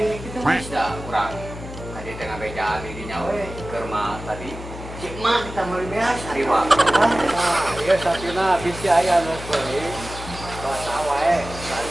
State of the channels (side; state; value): left; noise; hum, 12 dB below the sound